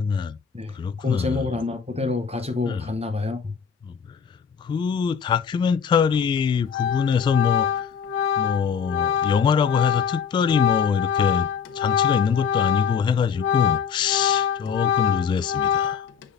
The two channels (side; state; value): right; quieter; 6.8 dB